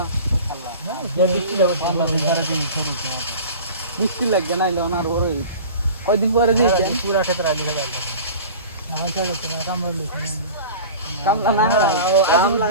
মিষ্টি লাগবে না এলে ওনার ওর কয়দিন পরে দিয়েছেন পুরা ক্ষেত্রে আলি গেল আমার কাছে তো কামড় লিখে কামলা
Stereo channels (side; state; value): both; inverted; correlation -0.38